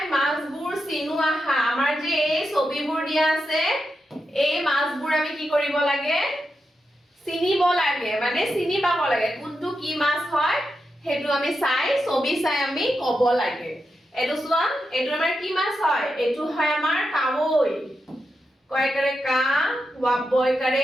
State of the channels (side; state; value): both; normal; correlation 0.87